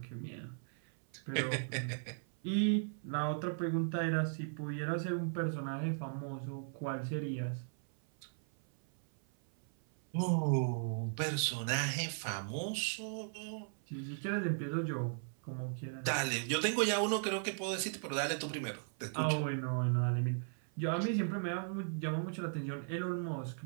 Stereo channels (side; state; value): left; silent; 53 dB below the other